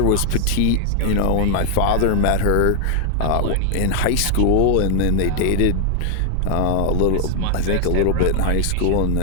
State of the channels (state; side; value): different; both; correlation 0.00